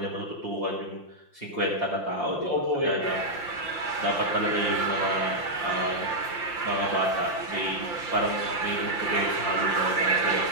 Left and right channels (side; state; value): right; late; 5.7 ms